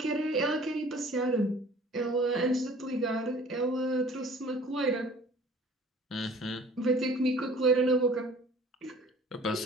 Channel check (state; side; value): normal; both; correlation 0.49